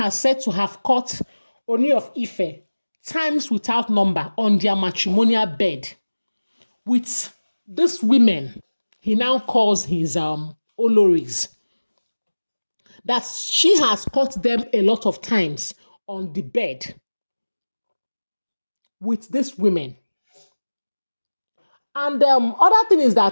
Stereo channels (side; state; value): both; inverted; correlation -1.00